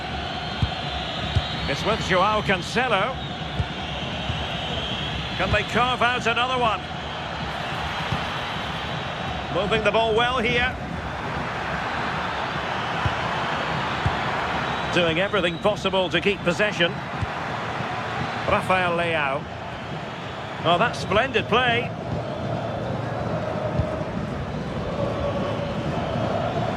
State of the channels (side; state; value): both; identical; correlation 1.00